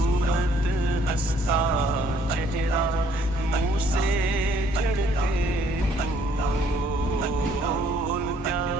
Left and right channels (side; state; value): both; normal; correlation 0.63